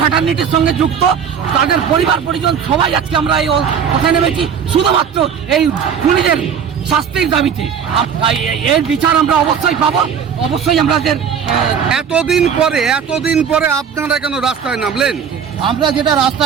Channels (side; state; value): left; quieter; 7.4 dB